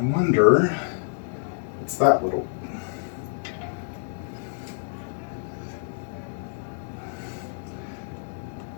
wonder, it's that little.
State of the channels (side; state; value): right; silent; digital silence